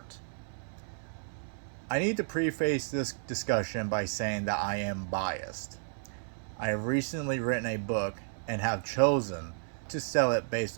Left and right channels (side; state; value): left; silent; 56 dB below the other